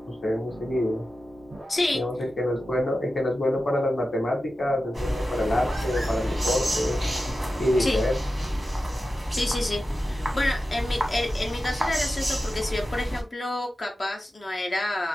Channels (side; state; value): both; normal; correlation 0.93